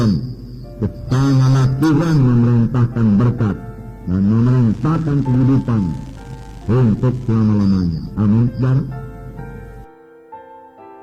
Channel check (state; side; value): identical; both; correlation 1.00